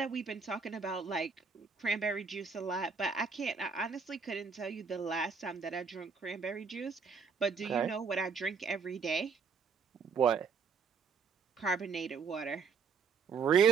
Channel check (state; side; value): quieter; left; 5.5 dB